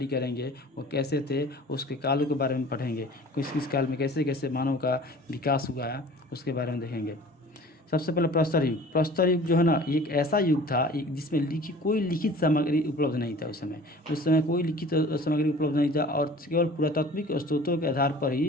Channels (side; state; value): both; normal; correlation 0.45